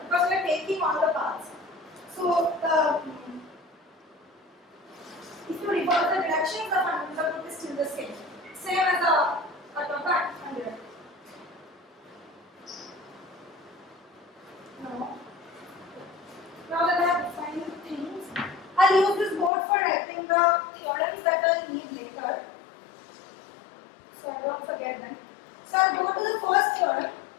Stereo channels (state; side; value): drops out; right; at 19.5 s